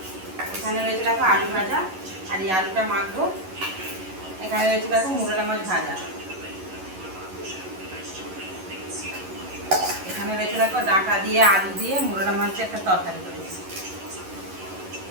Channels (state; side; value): late; left; 11 ms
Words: এখানে রয়েছে দেখো আলু ভাজা আর এই আলুটা মাখবো, এখানে রয়েছে দেখো মুরলা মাছ ভাজা, এখানে রয়েছে দেখো ডাঁটা দিয়ে আলু দিয়ে মুরলা মাছের একটা তরকারি করেছি।